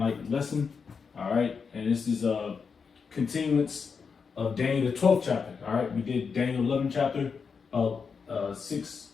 lesson. All right, and this is a continuance of Daniel the 12th chapter. All right, we did Daniel 11th chapter of six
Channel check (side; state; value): right; quieter; 5.7 dB